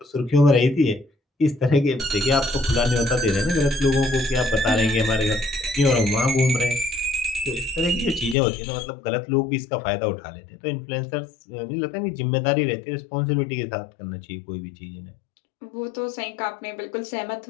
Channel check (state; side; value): drops out; right; at 8.3 s